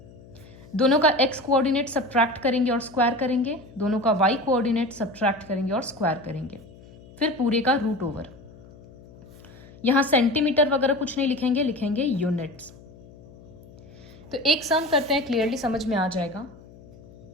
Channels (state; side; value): noise; left; hum, 21 dB below the sound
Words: दोनों का x कोऑर्डिनेट सब्ट्रैक्ट करेंगे और स्क्वायर करेंगे, दोनों का y कोऑर्डिनेट सब्ट्रैक्ट करेंगे और स्क्वायर करेंगे, फिर पूरे का रूट ओवर. यहां सेंटीमीटर वगैरह कुछ नहीं लिखेंगे, लिखेंगे यूनिट्स. तो एक सम करते हैं, क्लियरली समझ में आ जाएगा.